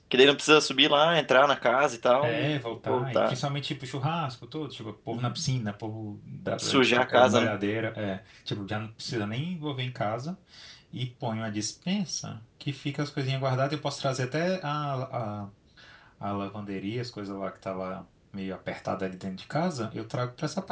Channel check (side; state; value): both; identical; correlation 1.00